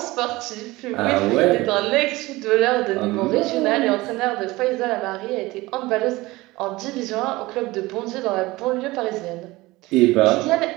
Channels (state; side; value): quieter; left; 20.2 dB